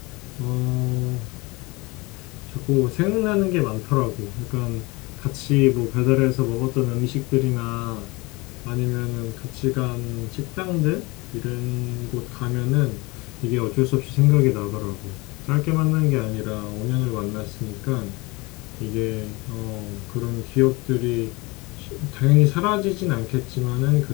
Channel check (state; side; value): quieter; right; 24.7 dB